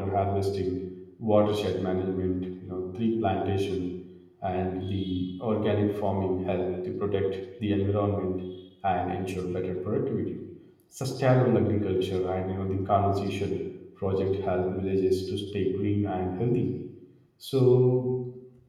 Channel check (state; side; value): identical; both; correlation 1.00